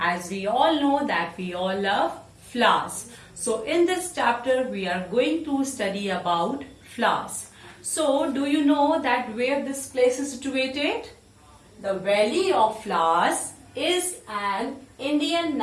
we all know that we all love flowers. So in this chapter we are going to study about flowers. So do you know that where this place is situated? The Valley of Flowers is an Indian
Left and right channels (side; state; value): both; identical; correlation 1.00